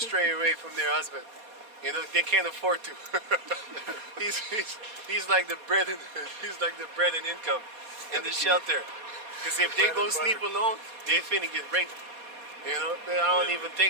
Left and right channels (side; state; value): left; late; 4.2 ms